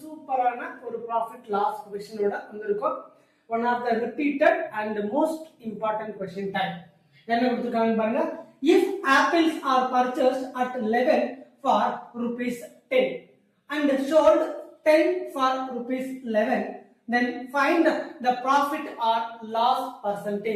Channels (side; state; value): both; identical; correlation 1.00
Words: சூப்பரான ஒரு ப்ராஃபிட் லாஸ் கொஸ்டினோட வந்திருக்கோம். One of the repeated and most important question type. என்ன கொடுத்துருக்காங்க பாருங்க. If apples are purchased at 11 for rupees 10 and sold 10 for rupees 11, then find the profit or loss